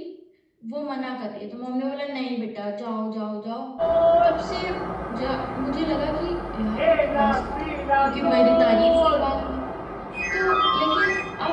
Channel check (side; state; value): both; identical; correlation 1.00